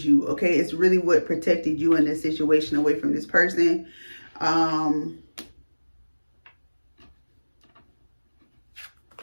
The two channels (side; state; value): both; inverted; correlation -1.00